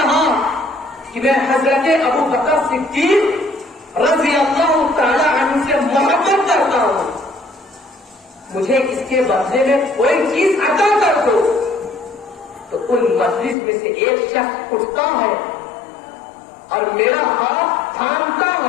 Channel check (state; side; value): drops out; right; at 13.6 s